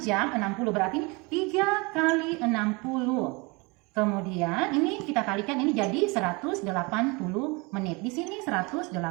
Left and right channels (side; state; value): left; quieter; 27.7 dB